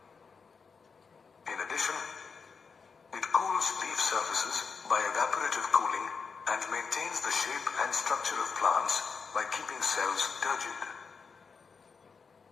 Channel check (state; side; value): quieter; right; 5.4 dB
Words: In addition, it cools leaf surfaces by evaporative cooling and maintains the shape and structure of plants by keeping cells turgid.